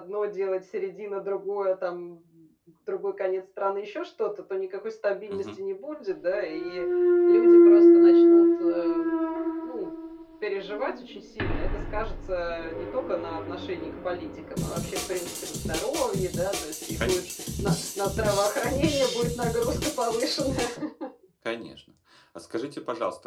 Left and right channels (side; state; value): both; identical; correlation 1.00